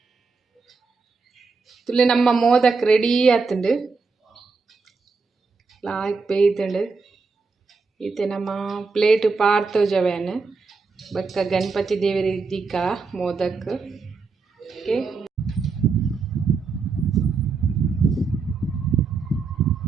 ತುಲೆ ನಮ್ಮ ಮೋದಕ್ ರೆಡಿ ಆತುಂಡು ಲಾಯ್ಕ್ ಬೇಯ್ತುಂಡು ಈತೆ ನಮ್ಮ ಪ್ಲೇಟ್ ಪಾರ್ತೋಜವೇನು ಬಕ್ಕ ಗಣಪತಿ ದೇವರ ಇದ್ದಿಕ್ಕ ಮೋದಕ್ ಓಕೆ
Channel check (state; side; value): quieter; left; 4.5 dB